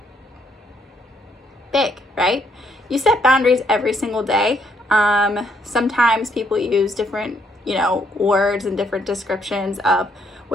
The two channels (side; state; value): both; normal; correlation 0.71